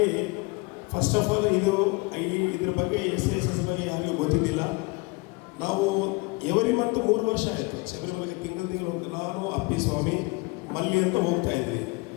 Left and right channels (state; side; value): quieter; right; 26.8 dB